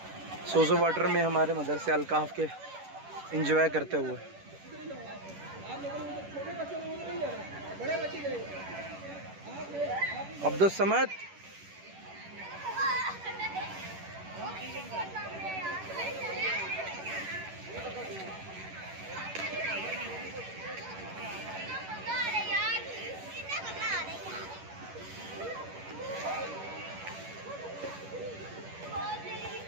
सोजो वाटर में हमारे मदरसे अलकाफ के एंजॉय करते हुए। अब्दुल समद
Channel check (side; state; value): left; late; 11 ms